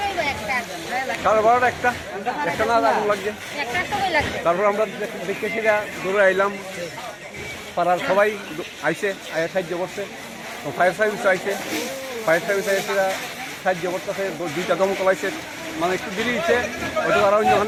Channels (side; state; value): both; identical; correlation 1.00